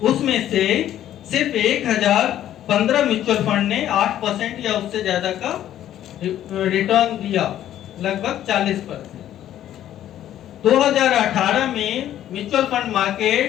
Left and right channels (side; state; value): right; quieter; 11.8 dB